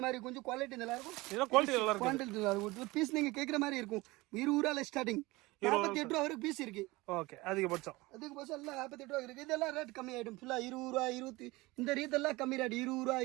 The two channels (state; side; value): quieter; left; 21.6 dB